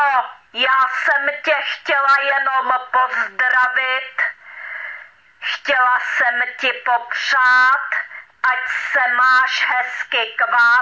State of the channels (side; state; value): both; identical; correlation 1.00